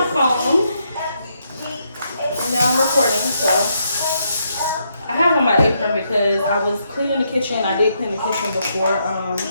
phone. And now I'm recording, so I have on my apron because I was cleaning the kitchen. I did clean the kitchen before.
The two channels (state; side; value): inverted; both; correlation -0.78